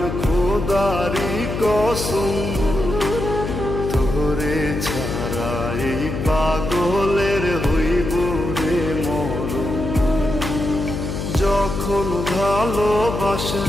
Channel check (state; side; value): noise; left; hum, 4 dB below the sound